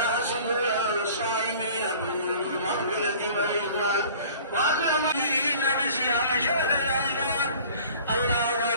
صدور الصائمين بنور المغفرة والرضوان وأكرمين بصيام شهر رمضان. الله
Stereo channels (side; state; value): both; inverted; correlation -0.47